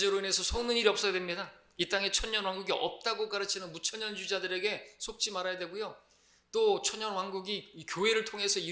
인해서 속는 일이 없어야 됩니다. 이 땅에 천년왕국이 없다고 가르치는 무천년주의자들에게 속지 말아야 되고요. 또 천년왕국이 이 교회를 통해서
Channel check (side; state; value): both; identical; correlation 1.00